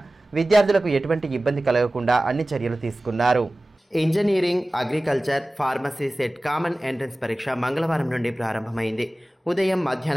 విద్యార్థులకు ఎటువంటి ఇబ్బంది కలగకుండా అన్ని చర్యలు తీసుకున్నారు. Engineering, agriculture, pharmacy set common entrance పరీక్ష మంగళవారం నుండి ప్రారంభమైంది. ఉదయం,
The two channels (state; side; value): normal; both; correlation 0.97